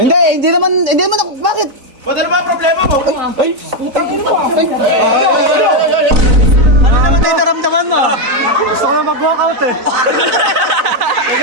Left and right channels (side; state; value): left; late; 4.0 ms